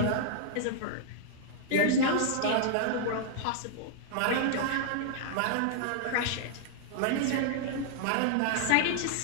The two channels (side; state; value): both; different; correlation -0.01